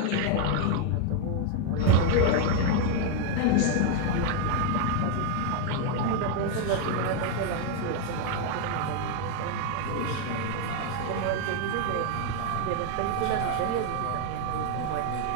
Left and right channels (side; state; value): both; different; correlation 0.01